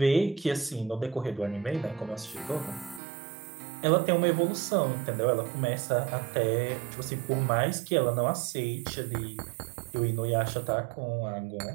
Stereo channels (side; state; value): left; drops out; at 3.0 s